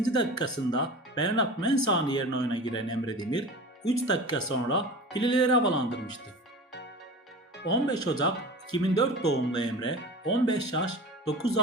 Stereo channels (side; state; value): both; normal; correlation 0.34